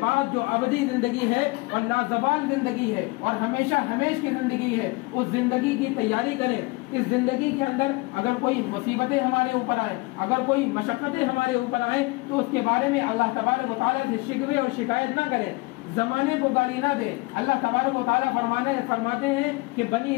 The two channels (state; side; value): quieter; right; 24.0 dB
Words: جو ابدی زندگی ہے اور لازوال زندگی ہے اور ہمیشہ ہمیش کی زندگی ہے، اس زندگی کی تیاری کریں۔ اس زندگی کے اندر اگر کوئی مصیبتیں ہمارے اوپر آئیں، اگر کوئی مشقتیں ہمارے اوپر آئیں، تو اس کے بارے میں اللہ تبارک و تعالیٰ سے شکوے اور شکایت نہ کریں، زمانے کو گالی نہ دے۔ اللہ تبارک و تعالیٰ فرماتے ہیں کہ بنی